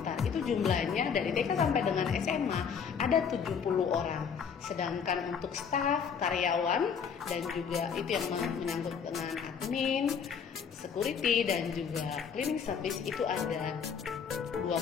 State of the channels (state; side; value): quieter; right; 6.8 dB